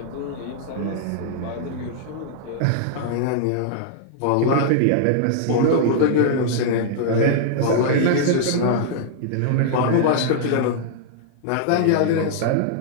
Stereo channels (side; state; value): both; different; correlation -0.01